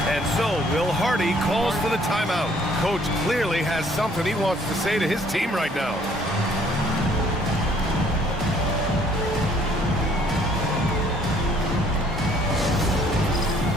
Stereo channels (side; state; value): both; normal; correlation 0.61